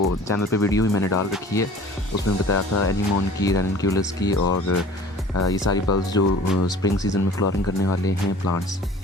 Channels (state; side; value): normal; both; correlation 0.46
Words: चैनल पे वीडियो भी मैंने डाल रखी है, उसमें बताया था एनीमोन की, रेनक्यूलस की और ये सारी बल्ब्स जो स्प्रिंग सीज़न में फ्लावरिंग करने वाले हैं प्लांट्स,